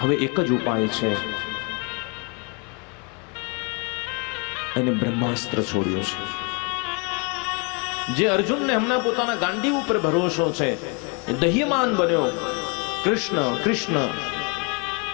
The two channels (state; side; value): quieter; right; 34.0 dB